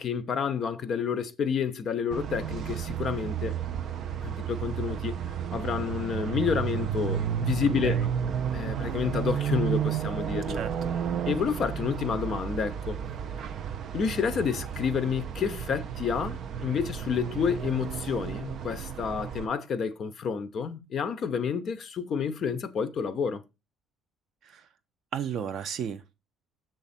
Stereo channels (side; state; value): both; normal; correlation 0.55